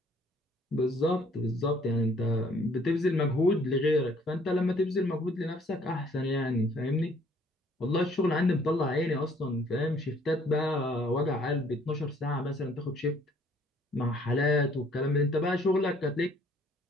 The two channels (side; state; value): both; normal; correlation 0.61